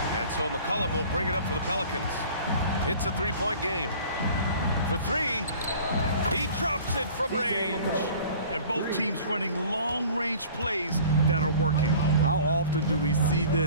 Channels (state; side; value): inverted; both; correlation -0.46